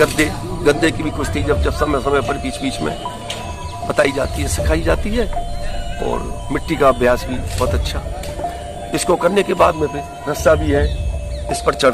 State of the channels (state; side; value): identical; both; correlation 1.00